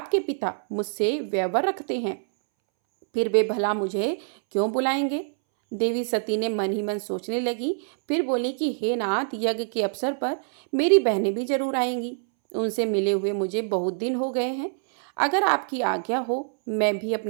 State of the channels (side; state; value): left; silent; 62 dB below the other